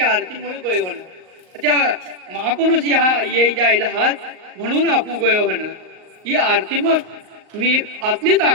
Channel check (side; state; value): left; late; 38 ms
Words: आरती मुळे गोयो होणं त्या महापुरुष या ये जायला हात म्हणून आपू गोयो होणं ही आरती मग मी आतली